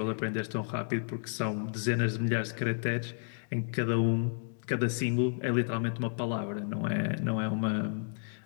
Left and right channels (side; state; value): right; silent; digital silence